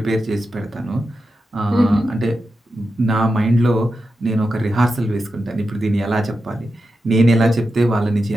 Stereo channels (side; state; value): both; normal; correlation 0.90